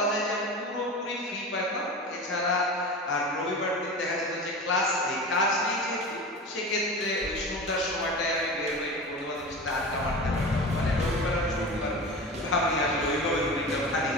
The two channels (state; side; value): normal; both; correlation 0.31